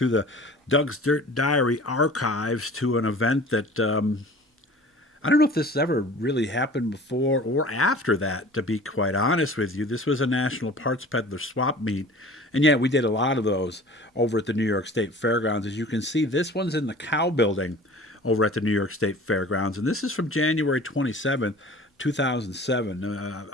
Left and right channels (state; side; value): normal; both; correlation 0.44